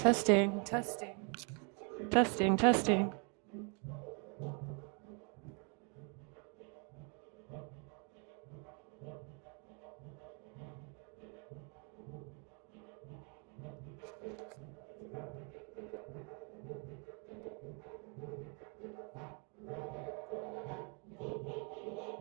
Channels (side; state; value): left; quieter; 36.3 dB